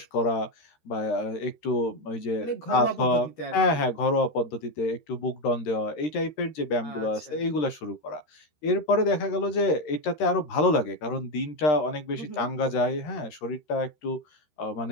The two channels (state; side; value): late; right; 13 ms